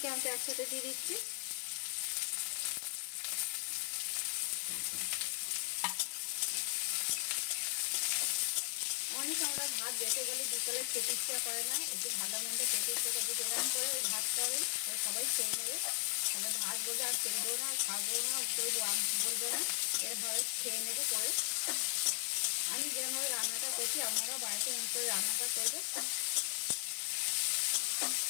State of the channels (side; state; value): right; silent; 53 dB below the other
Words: একসাথে দিয়ে দিচ্ছি। অনেক আমরা ভাত বেঁচে গেলে বিকেলে খেতে ইচ্ছা করে না, একটু ভালো মন্দ খেতে ইচ্ছা করে, এরকম করে ওই ভাতটা হবে সবাই খেয়ে নেবে। তাহলে ভাত বলবে আর খেলবো না, খাবো না, কেউ বলবে না, এরভাবে খেয়ে নেবে করে। আমি যেভাবে রান্নাটা করছি আপনারাও বাড়িতে এমন করে রান্নাটা করবে।